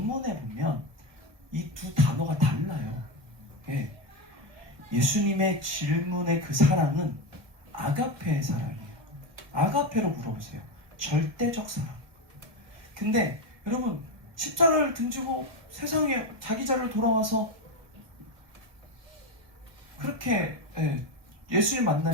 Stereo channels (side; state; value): left; late; 1.5 ms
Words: 보면 이 두 단어가 달라요. 예. 예수님의 질문의 그 사랑은 아가페의 사랑이에요. 아가페로 물어보세요. 절대적 사랑. 근데 여러분 십자가를 등지고 세상에 자기 자를 돌아와서 그렇게 예수님